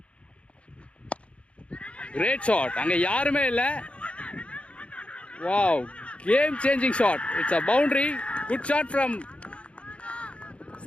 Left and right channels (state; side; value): late; right; 0.061 ms